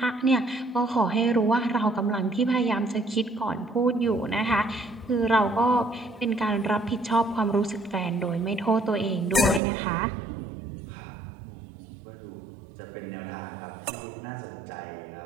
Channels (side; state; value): left; drops out; at 9.6 s